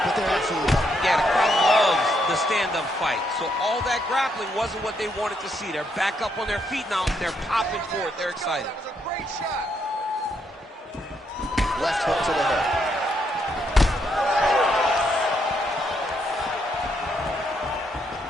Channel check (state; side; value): normal; both; correlation 0.76